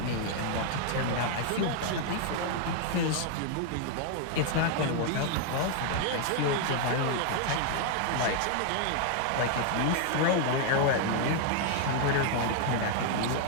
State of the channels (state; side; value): different; both; correlation 0.00